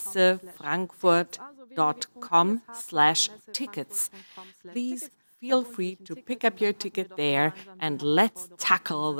Please feel free to pick up your ticket there and let's tackle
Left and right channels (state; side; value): inverted; both; correlation -1.00